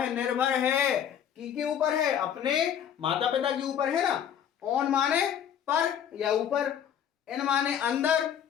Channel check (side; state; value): right; quieter; 9.1 dB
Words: निर्भर है के ऊपर है, अपने माता पिता के ऊपर है ना। ऑन माने पर या ऊपर, इन माने अंदर,